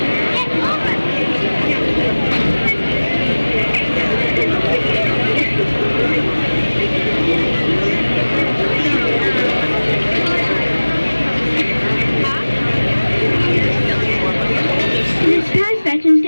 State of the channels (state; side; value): inverted; both; correlation -1.00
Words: This past Veterans